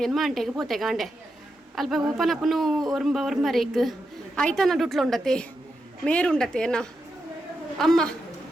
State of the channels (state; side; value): normal; both; correlation 0.86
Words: ಮಂಟೆಗೆ ಪೋತೆ ಗಾಂಡೆ ಅಲ್ಪ ಓಪನಪ್ಪನು ಒರ್ಮರೇಕ್ ಆಯ್ತಾನ ಡುಟ್ಲು ಉಂಡತೆ ಮೇರುಂಡತೆ ಎನ್ನ ಅಮ್ಮ